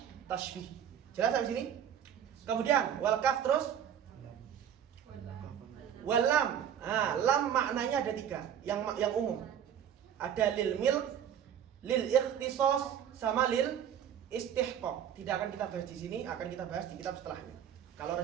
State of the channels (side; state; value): left; quieter; 9.2 dB